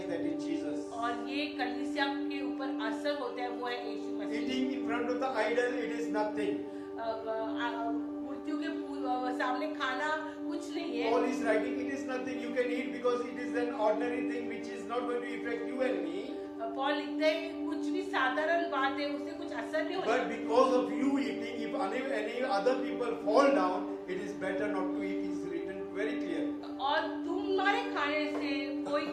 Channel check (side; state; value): both; identical; correlation 1.00